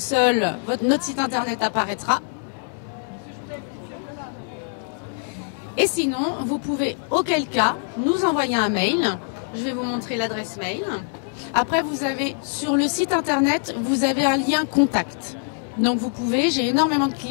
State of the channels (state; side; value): silent; right; 63 dB below the other